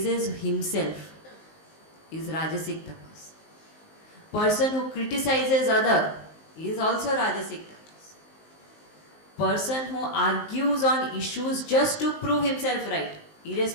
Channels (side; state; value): right; late; 19 ms